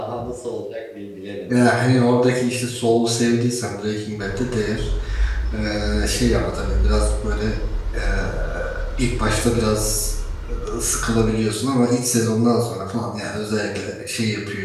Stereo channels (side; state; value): both; identical; correlation 1.00